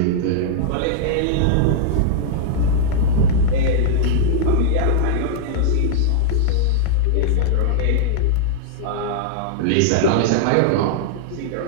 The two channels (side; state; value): both; different; correlation -0.01